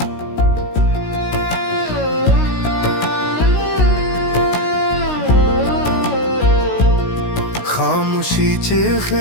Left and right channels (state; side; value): late; right; 16 ms